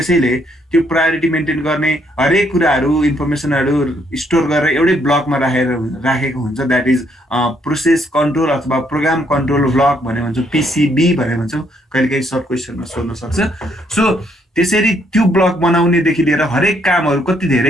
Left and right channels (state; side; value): normal; both; correlation 0.71